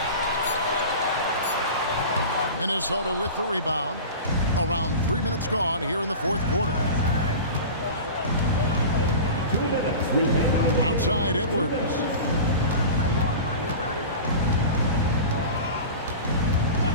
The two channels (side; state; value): both; inverted; correlation -0.33